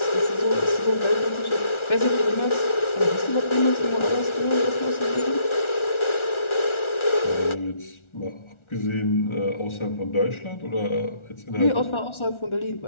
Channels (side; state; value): right; late; 1.4 ms